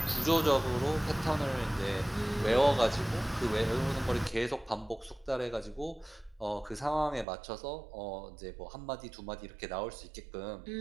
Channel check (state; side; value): drops out; left; at 7.2 s